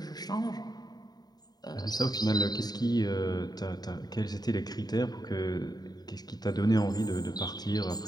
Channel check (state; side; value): late; right; 0.19 ms